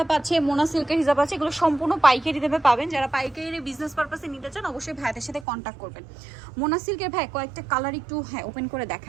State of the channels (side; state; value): left; drops out; at 5.5 s